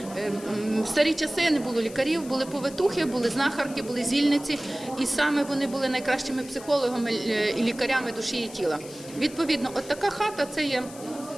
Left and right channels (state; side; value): noise; left; hiss, 17 dB below the sound